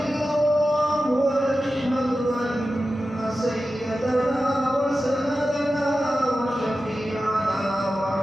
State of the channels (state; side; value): normal; both; correlation 0.93